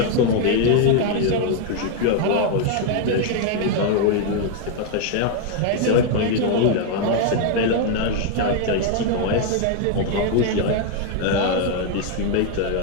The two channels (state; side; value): different; both; correlation 0.00